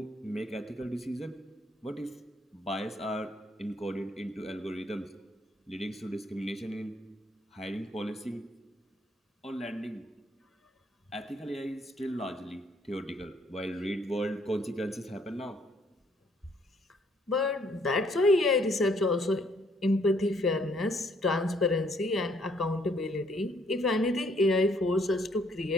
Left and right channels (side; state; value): both; normal; correlation 0.67